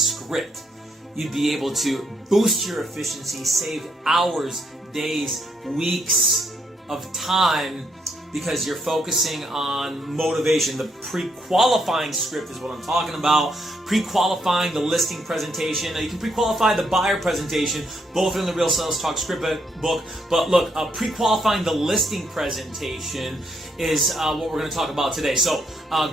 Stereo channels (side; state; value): both; normal; correlation 0.75